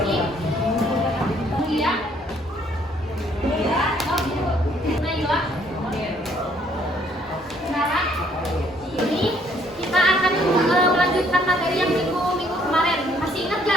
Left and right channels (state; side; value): normal; both; correlation 0.65